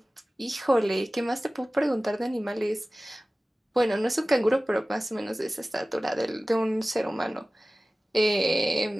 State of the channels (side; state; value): both; normal; correlation 0.97